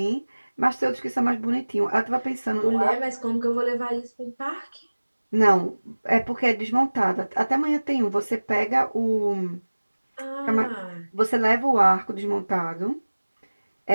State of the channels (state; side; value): inverted; both; correlation -1.00